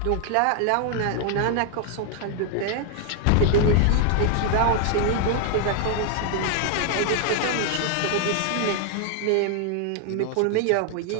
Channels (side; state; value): both; different; correlation 0.00